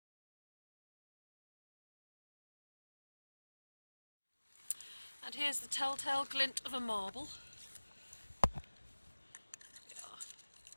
And here's the telltale glint of a marble. Yeah.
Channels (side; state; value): both; inverted; correlation -1.00